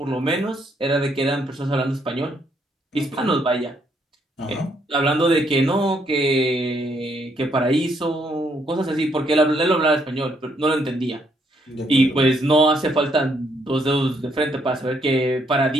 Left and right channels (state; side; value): normal; both; correlation 0.72